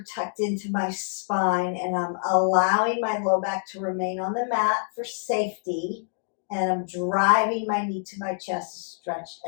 tucked into my spine, and I'm allowing my low back to remain on the mat for safety. And I'm driving my knee to my chest to stretch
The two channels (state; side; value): silent; right; digital silence